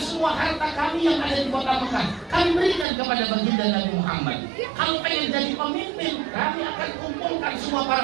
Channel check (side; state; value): left; drops out; at 2.9 s